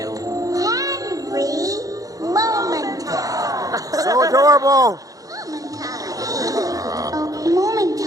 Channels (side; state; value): left; late; 0.17 ms